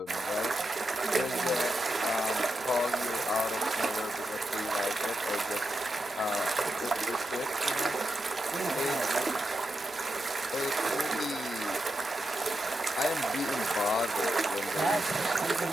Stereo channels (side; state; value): both; normal; correlation 0.87